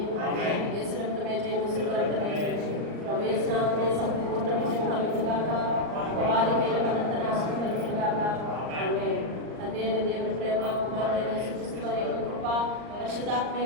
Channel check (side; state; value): left; late; 38 ms